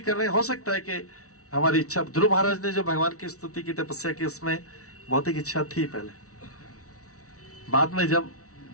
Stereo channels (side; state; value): right; late; 0.65 ms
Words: कर रहे हैं, हो सकता है कि हमारी इच्छा, ध्रुव महाराज ने जो भगवान की स्तुति की, तपस्या की, उसमें भौतिक इच्छा थी पहले, बाद में जब